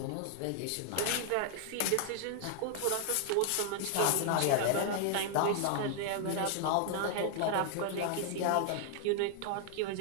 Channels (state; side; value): different; both; correlation 0.00